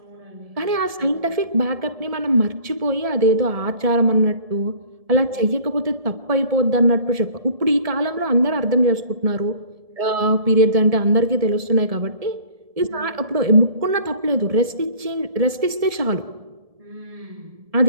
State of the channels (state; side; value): late; left; 1.7 ms